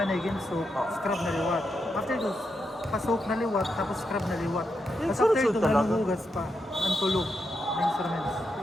yung soap, scrub na liwat. After ito, pa-soap na liwat, tapos scrub na liwat. Yung Tapos after sunod-sunod ito, talaga? nanuhugas pa, ang tulog ng instruments.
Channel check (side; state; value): both; normal; correlation 0.85